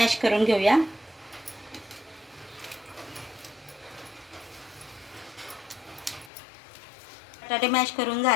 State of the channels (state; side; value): drops out; right; at 6.3 s